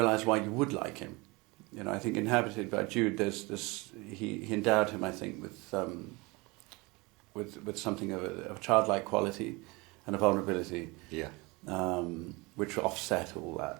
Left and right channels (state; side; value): quieter; left; 25.3 dB